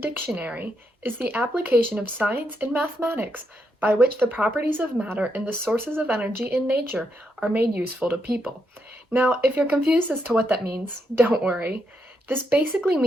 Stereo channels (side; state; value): both; normal; correlation 0.80